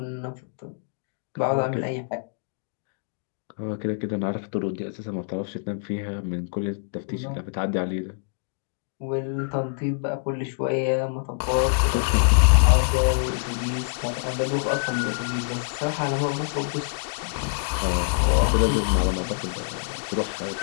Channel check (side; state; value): right; silent; digital silence